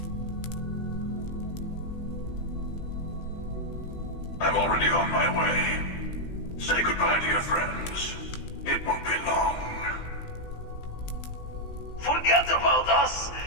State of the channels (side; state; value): right; late; 18 ms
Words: I'm already on my way. Say goodbye to your friends. It won't be long. Forget about us.